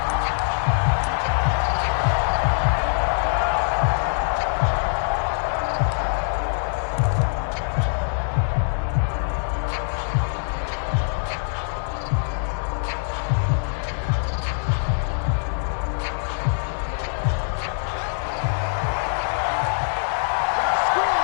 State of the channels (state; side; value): silent; right; digital silence